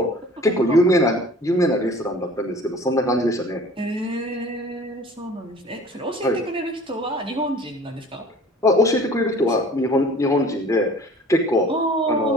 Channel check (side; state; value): both; normal; correlation 0.47